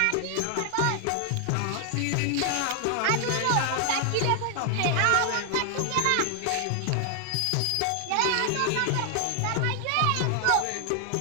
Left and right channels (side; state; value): both; different; correlation 0.00